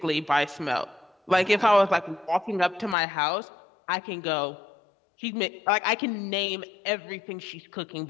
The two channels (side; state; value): right; drops out; at 3.0 s